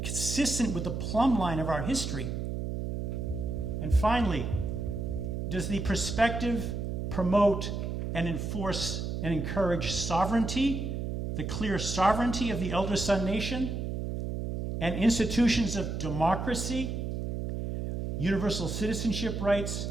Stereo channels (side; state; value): right; noise; hum, 3 dB below the sound